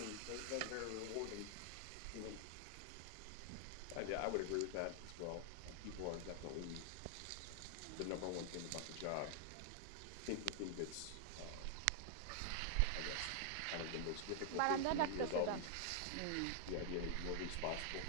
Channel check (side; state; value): both; different; correlation 0.00